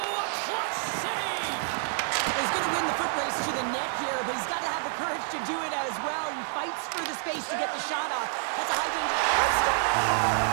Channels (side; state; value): left; silent; digital silence